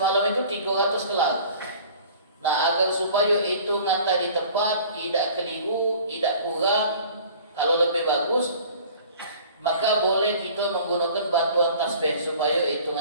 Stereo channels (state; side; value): inverted; both; correlation -0.47